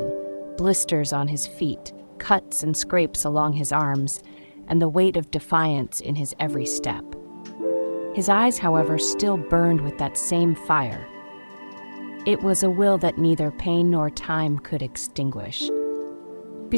blisters on his feet, cuts and scrapes along his arms, and the weight of defiance in his every step. His eyes, however, still burned with that same fire. It was a will that neither pain nor time could extinguish.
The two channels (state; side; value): inverted; both; correlation -1.00